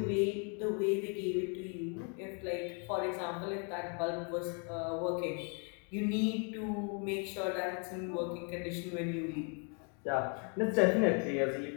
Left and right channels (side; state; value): right; quieter; 38.6 dB